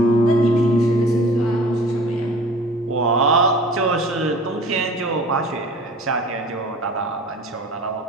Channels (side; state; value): both; normal; correlation 0.45